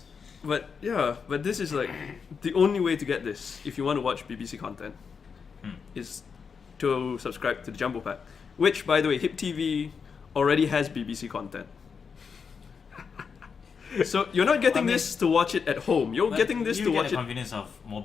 But yeah, but this is like the only way to get this if you want to watch BBC content is to subscribe to the Jumbo Pack. Which, by the way, Hip TV already has BBC content. So you're not getting I mean- this to watch it at home. You're But getting this you to get watch the it. convenience of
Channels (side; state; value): right; quieter; 5.9 dB